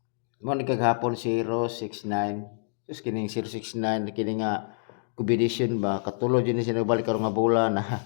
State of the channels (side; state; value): right; silent; digital silence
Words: Mo ni kagahapon 069. Tapos kining 069 kini nga combination ba katulod yun siya nagbalik karon nga bola na